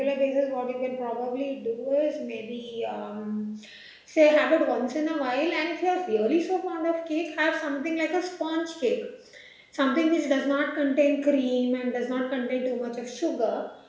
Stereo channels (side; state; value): both; identical; correlation 1.00